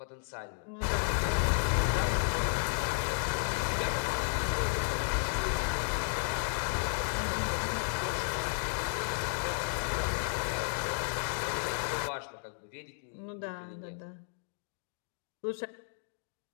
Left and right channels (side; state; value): right; silent; digital silence